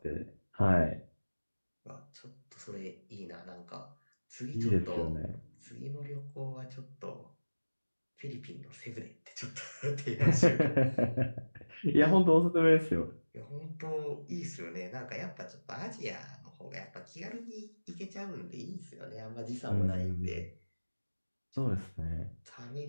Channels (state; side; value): inverted; both; correlation -1.00